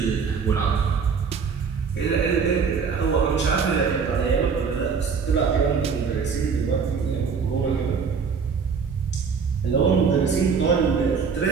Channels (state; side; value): quieter; left; 5.8 dB